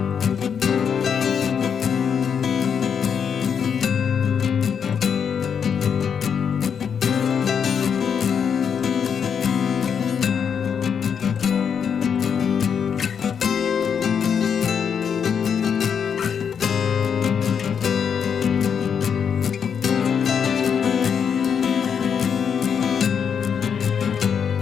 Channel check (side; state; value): right; quieter; 7.2 dB